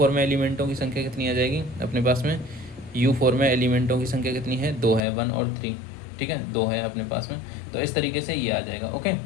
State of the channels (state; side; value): drops out; right; at 5.0 s